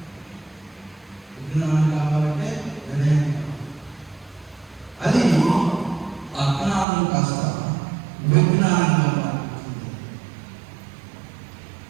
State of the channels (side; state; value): left; drops out; at 6.9 s